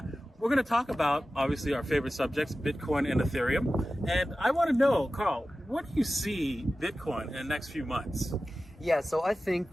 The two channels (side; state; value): both; normal; correlation 0.95